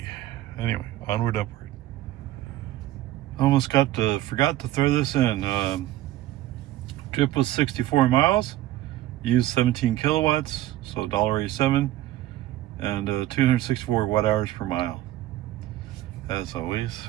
Anyway, onward, upward. Almost forgot to throw this in. Trip was 64 miles. Used 17 kilowatts, so $1.87. And 264 watt hours per mile. As always,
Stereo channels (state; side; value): quieter; left; 14.6 dB